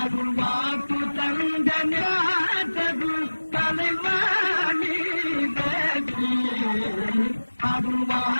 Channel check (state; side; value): inverted; both; correlation -1.00